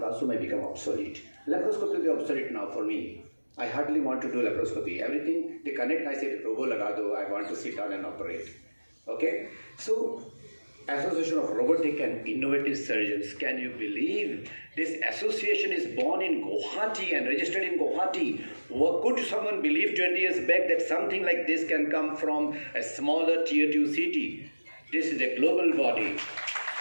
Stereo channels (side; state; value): both; inverted; correlation -1.00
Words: also may become obsolete. Laparoscopy will be obsolete now for me. I hardly want to do laparoscopy. Everything they connect, I say, robo laga do, I want to sit down and operate. Okay? So, Association of Robotic and Innovative Surgeons. Can you believe this association is born in Guwahati and registered in Guwahati? Could someone believe 20 years back that something like this can come from a smaller tier 2 city? This is a global body.